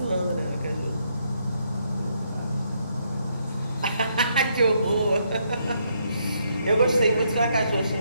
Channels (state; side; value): inverted; both; correlation -0.75